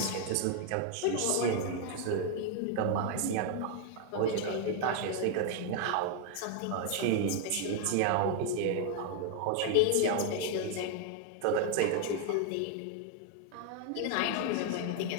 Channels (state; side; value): different; both; correlation 0.00